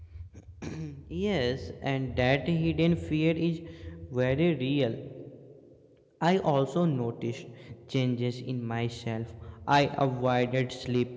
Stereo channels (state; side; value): identical; both; correlation 1.00